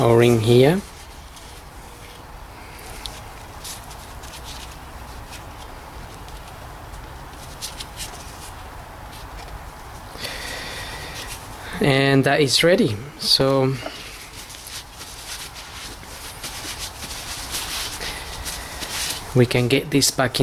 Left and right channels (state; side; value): identical; both; correlation 1.00